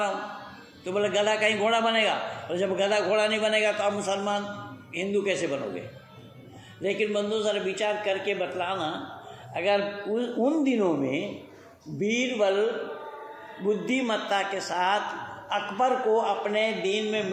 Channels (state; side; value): identical; both; correlation 1.00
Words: हूँ। तो बोले गधा कहीं घोड़ा बनेगा? और जब गधा घोड़ा नहीं बनेगा तो आप मुसलमान हिंदू कैसे बनोगे? लेकिन बंधु जरा विचार करके बतलाना, अगर उन दिनों में बीरबल बुद्धिमत्ता के साथ अकबर को अपने दीन में